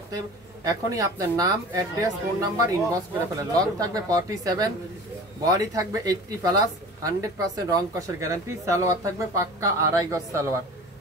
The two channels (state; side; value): normal; both; correlation 0.39